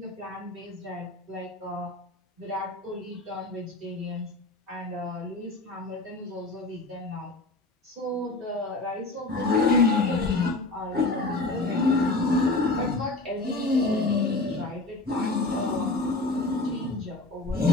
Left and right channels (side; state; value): right; quieter; 3.0 dB